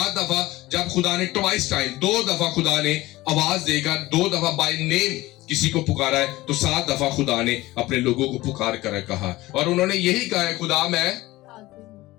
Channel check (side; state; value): right; quieter; 18.5 dB